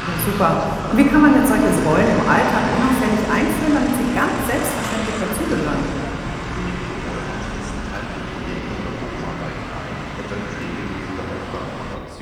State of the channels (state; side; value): identical; both; correlation 1.00